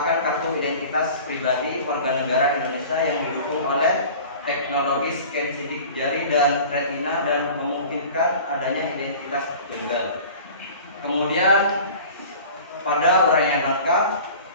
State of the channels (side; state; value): both; inverted; correlation -0.42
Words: kartu identitas pribadi warga negara Indonesia yang didukung oleh teknologi scan sidik jari dan retina dan memungkinkan adanya identitas tunggal. Kemudian pada uraian langkah